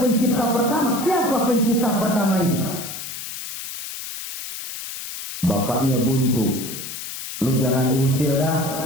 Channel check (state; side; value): noise; left; hiss, 9 dB below the sound